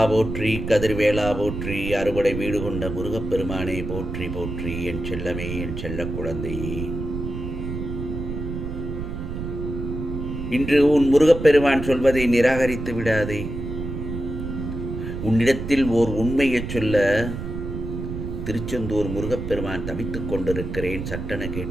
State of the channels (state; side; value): noise; right; rumble, 6 dB below the sound